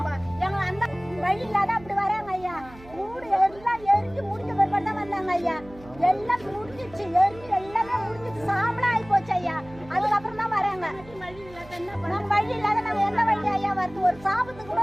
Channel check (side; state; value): right; noise; hum, 20 dB below the sound